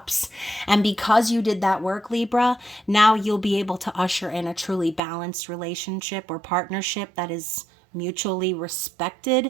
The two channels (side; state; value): left; drops out; at 5.0 s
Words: And because you did that work, Libra, now you'll be able to usher in a truly balanced relationship or partnership that is mutually